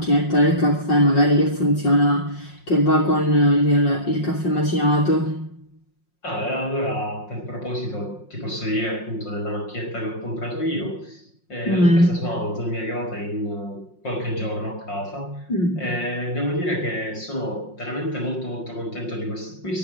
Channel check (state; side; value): late; right; 5.6 ms